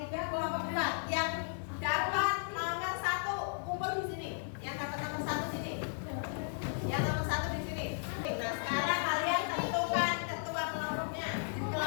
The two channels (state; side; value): silent; right; 54 dB below the other